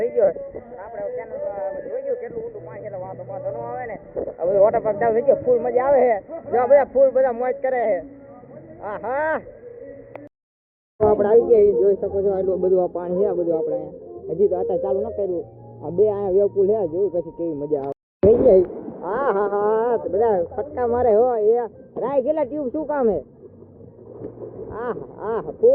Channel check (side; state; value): both; identical; correlation 1.00